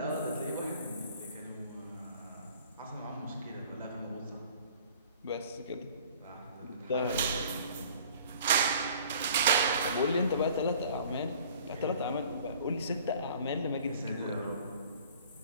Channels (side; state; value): both; inverted; correlation -0.51